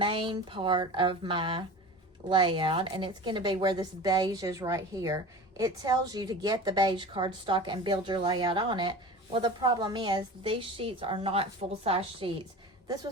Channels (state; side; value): normal; both; correlation 0.34